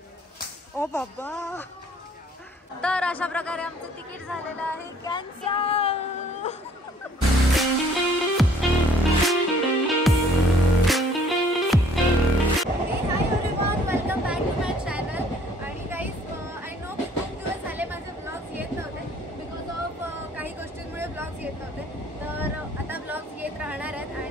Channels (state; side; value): normal; both; correlation 0.58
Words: ओ बाबा. तर अशा प्रकारे आमचं तिकीट झालेलं आहे cancel. Welcome back to my channel. आणि गाईज आय नो की खूप दिवस झाले माझे ब्लॉग्स येत नव्हते बिकॉज ऑफ काही गोष्टींमुळे ब्लॉग्स येत नव्हते. तर आता ब्लॉग्स येत राहणार आहेत.